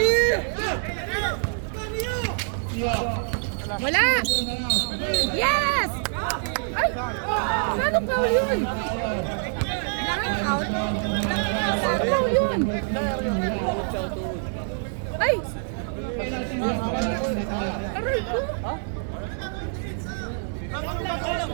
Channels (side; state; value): left; silent; 61 dB below the other